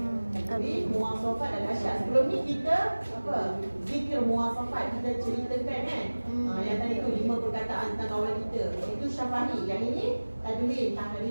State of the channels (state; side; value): inverted; both; correlation -1.00